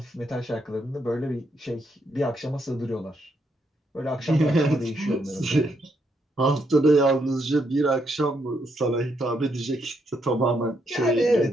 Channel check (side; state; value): both; normal; correlation 0.77